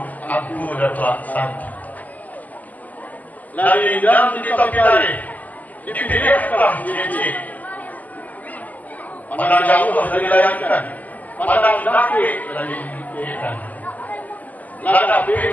aku datuk santi. Lagi dalam ditopikari, dipilihkah diri. Pandang jauh dari layangan, pandang dekat dari dipilihkan.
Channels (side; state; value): right; late; 0.076 ms